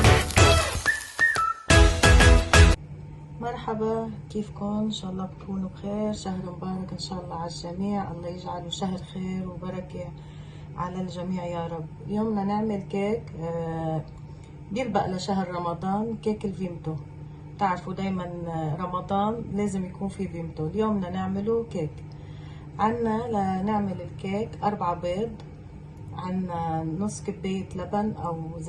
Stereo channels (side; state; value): both; identical; correlation 1.00